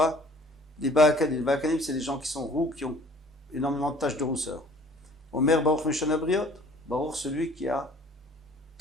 les Ba'akanim. Les Ba'akanim, c'est les gens qui sont roux, qui ont énormément de taches de rousseur. Omer Baruch Meshana Briot, Baruch, celui qui a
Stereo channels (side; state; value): both; normal; correlation 0.52